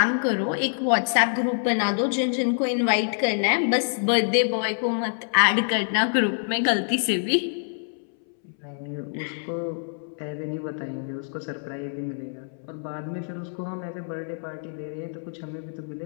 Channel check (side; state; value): right; silent; 61 dB below the other